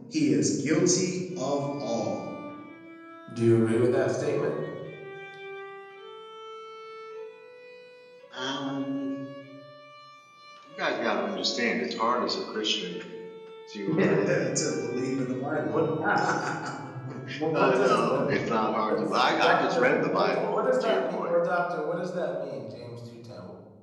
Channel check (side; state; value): both; identical; correlation 1.00